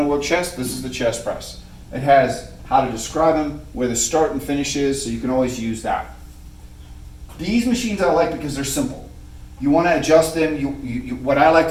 to work chest? This is the chest press. It has how to describe them, where the start and finish is, so you can always use that. These machines I like because they're simple. You want to adjust them. What I like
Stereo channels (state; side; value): identical; both; correlation 1.00